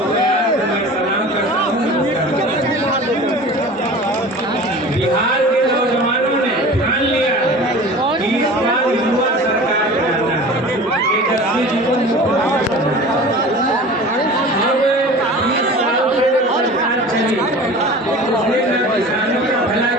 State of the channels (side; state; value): both; normal; correlation 0.38